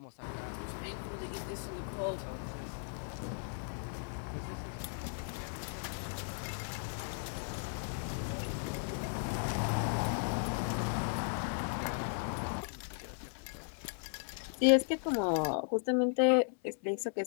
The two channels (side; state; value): right; silent; 53 dB below the other